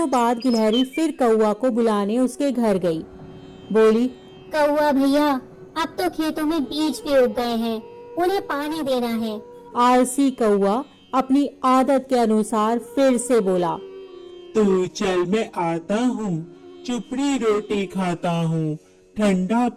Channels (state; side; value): identical; both; correlation 1.00